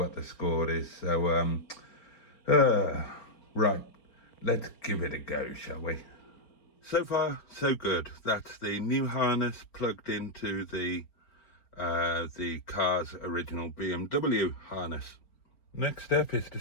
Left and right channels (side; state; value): right; late; 4.4 ms